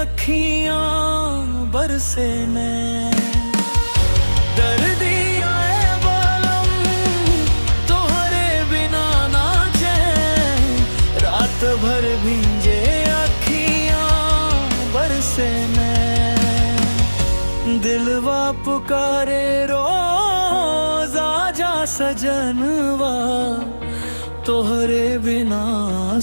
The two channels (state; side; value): inverted; both; correlation -1.00